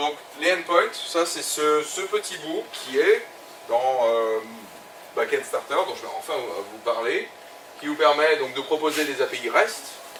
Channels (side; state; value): both; identical; correlation 1.00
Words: les endpoints, ça c'est ce petit bout qui est dans Backend Starter, dont je vais enfin vous parler, qui vous permet donc de proposer des API REST,